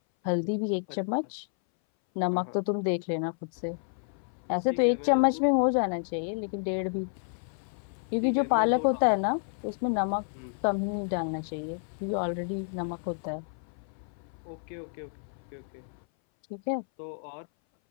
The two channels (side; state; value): right; silent; 58 dB below the other